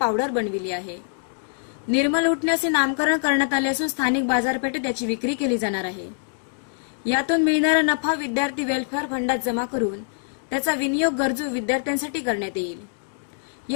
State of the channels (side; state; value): right; silent; digital silence